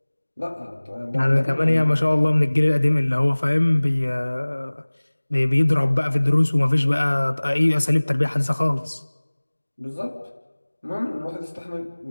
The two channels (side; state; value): both; inverted; correlation -1.00